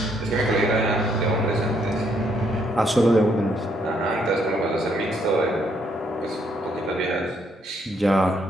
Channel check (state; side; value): normal; both; correlation 0.72